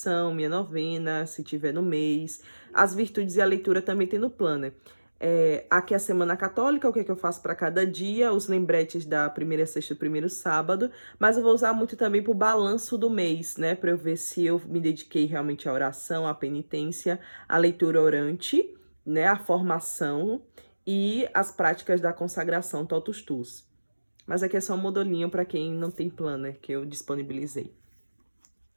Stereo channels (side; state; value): both; inverted; correlation -1.00